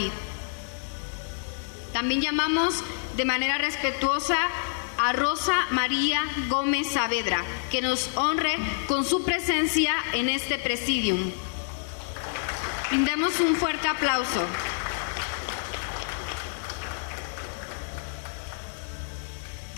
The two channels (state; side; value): silent; right; digital silence